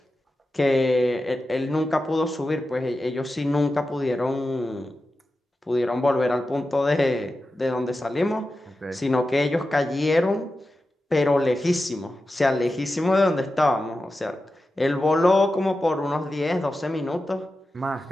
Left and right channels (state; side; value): normal; both; correlation 0.92